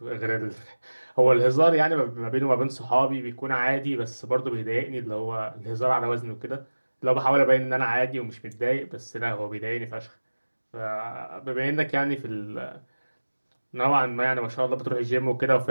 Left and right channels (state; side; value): inverted; both; correlation -1.00